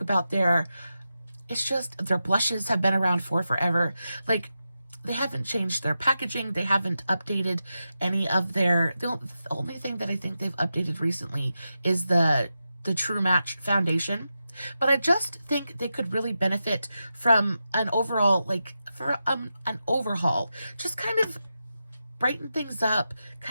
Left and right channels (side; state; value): both; inverted; correlation -0.89